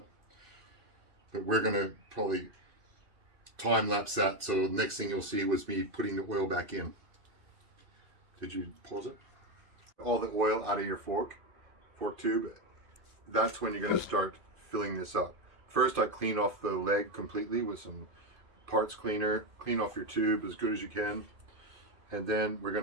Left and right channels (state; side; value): late; left; 2.6 ms